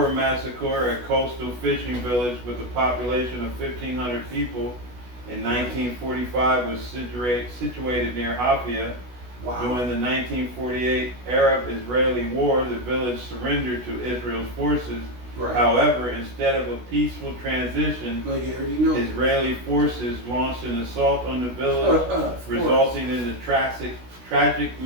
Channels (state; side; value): late; left; 16 ms